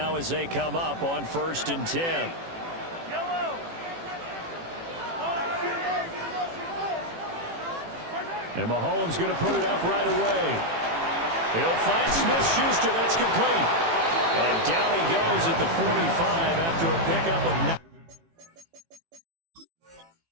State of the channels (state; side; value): late; left; 18 ms